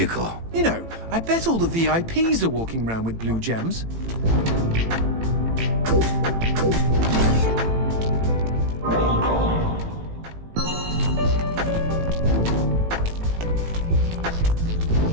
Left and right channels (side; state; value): left; late; 18 ms